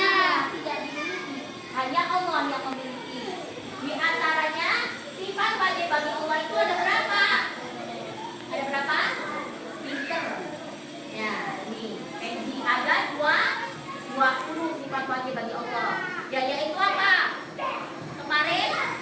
Tidak dimiliki. Hanya Allah yang memiliki. Di antaranya sifat wajib bagi Allah itu ada berapa? Ada berapa? Pinter. Ya, nih. Ada 20 sifat wajib bagi Allah. Ya, yaitu apa? Kemarin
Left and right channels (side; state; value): both; identical; correlation 1.00